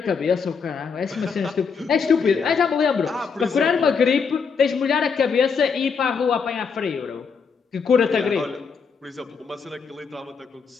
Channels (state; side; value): quieter; right; 5.7 dB